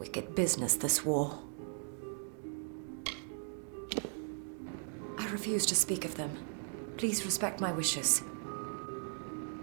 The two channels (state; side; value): silent; left; 53 dB below the other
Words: business, this war. I refuse to speak of them. Please respect my wishes.